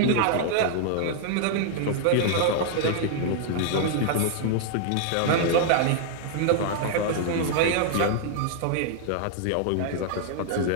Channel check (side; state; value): both; different; correlation 0.00